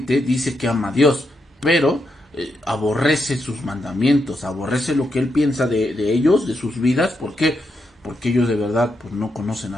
dice que ama a Dios, pero aborrece sus mandamientos, aborrece lo que Él piensa de ellos, de sus vidas. ¿Por qué? Porque ellos de verdad pues, no conocen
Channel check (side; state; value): both; normal; correlation 0.82